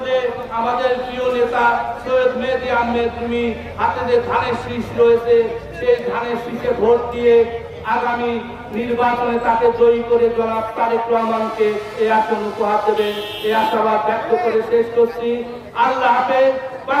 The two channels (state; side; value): identical; both; correlation 1.00